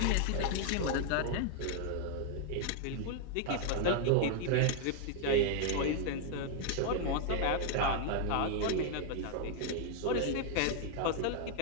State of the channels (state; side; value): different; both; correlation 0.00